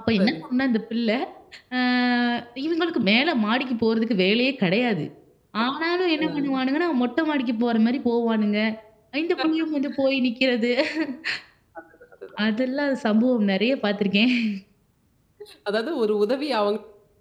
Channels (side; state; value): both; identical; correlation 1.00